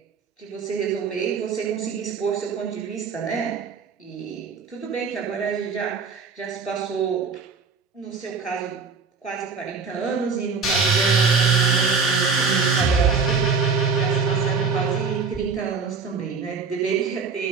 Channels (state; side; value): quieter; left; 5.2 dB